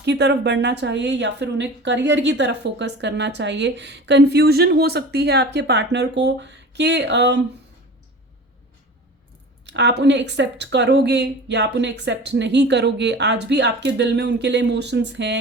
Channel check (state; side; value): normal; both; correlation 0.37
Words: तरफ बढ़ना चाहिए या फिर उन्हें करियर की तरफ फोकस करना चाहिए। कंफ्यूजन हो सकती है आपके पार्टनर को कि आप उन्हें एक्सेप्ट करोगे या आप उन्हें एक्सेप्ट नहीं करोगे। आज भी आपके दिल में उनके लिए इमोशंस